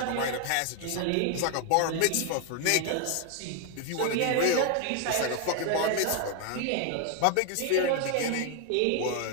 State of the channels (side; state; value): both; different; correlation 0.01